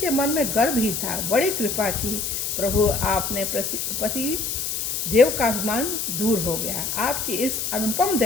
मन में गर्व ही था। बड़ी कृपा की प्रभु, आपने पति देव का अभिमान दूर हो गया। आपकी इस अनुपम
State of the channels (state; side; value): noise; left; hiss, 2 dB below the sound